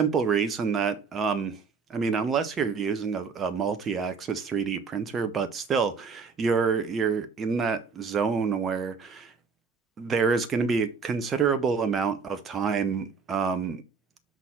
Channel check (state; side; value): quieter; left; 5.3 dB